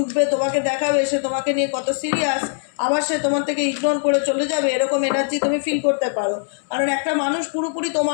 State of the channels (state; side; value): silent; right; 65 dB below the other